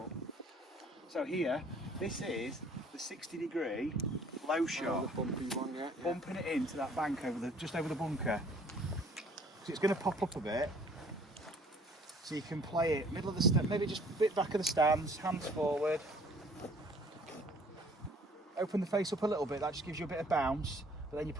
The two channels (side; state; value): both; normal; correlation 0.56